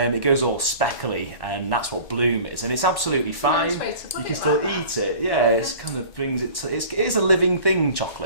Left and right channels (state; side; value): late; right; 1.1 ms